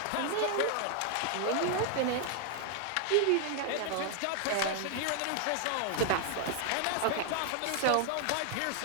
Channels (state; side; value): different; both; correlation 0.00